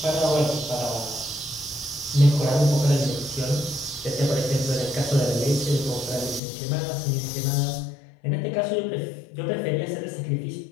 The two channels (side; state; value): right; drops out; at 6.4 s